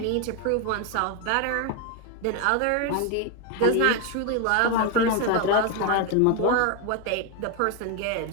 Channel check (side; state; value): both; different; correlation 0.02